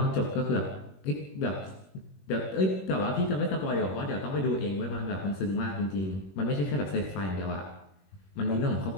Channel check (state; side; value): late; right; 21 ms